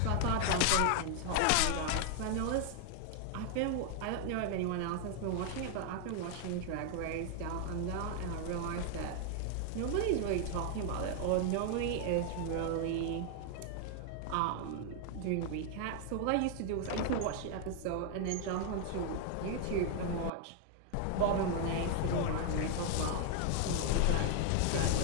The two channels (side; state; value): both; different; correlation 0.00